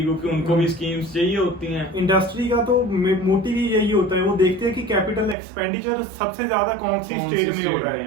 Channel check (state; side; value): drops out; left; at 5.4 s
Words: क्योंकि उनको भी स्कीम्स चाहिए होती हैं। इंडस्ट्री का तो मोटिव ही यही होता है, वो देखते हैं कि कैपिटल एक्सपेंडिचर सबसे ज्यादा कौन सी स्टेट में हो रहा